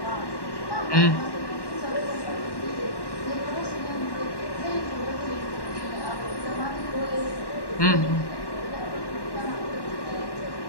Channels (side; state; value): right; late; 1.1 ms